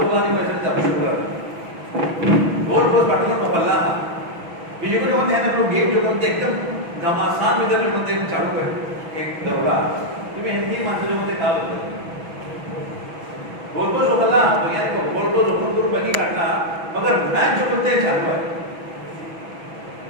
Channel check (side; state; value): left; late; 6.1 ms